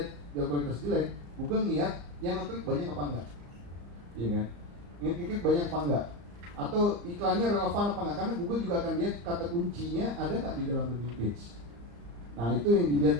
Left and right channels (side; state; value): left; late; 34 ms